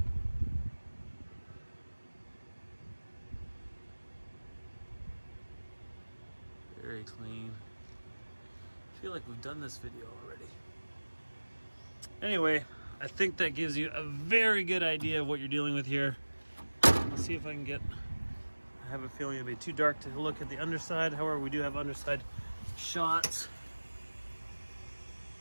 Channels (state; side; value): inverted; both; correlation -1.00